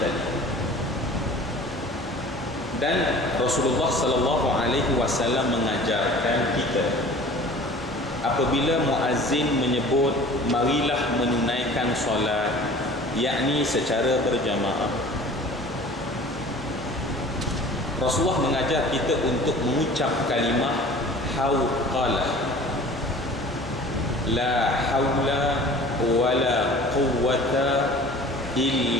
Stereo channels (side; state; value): both; normal; correlation 0.44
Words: tadi. Dan Rasulullah sallallahu alaihi wasallam mengajarkan kita, apabila muazzin menyebut marilah menunaikan solat, yakni secara berjamaah, Rasulullah mengajar kita untuk mengucap kalimah hauqalah, la haula wala quwwata